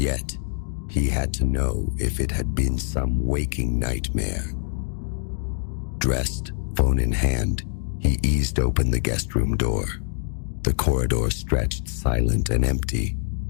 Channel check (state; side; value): silent; right; 62 dB below the other